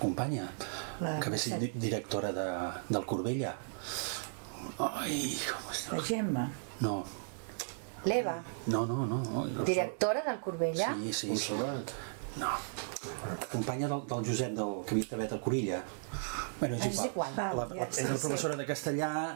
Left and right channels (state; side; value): silent; left; digital silence